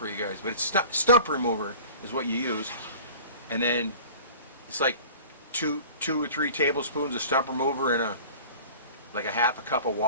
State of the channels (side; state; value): both; inverted; correlation -0.42